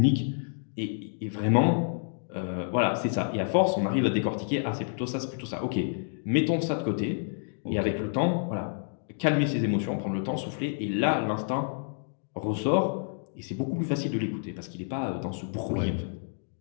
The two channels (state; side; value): silent; right; digital silence